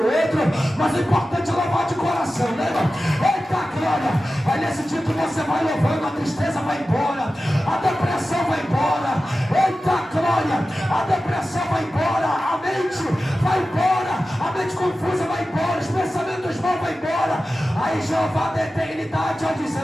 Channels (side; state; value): both; normal; correlation 0.94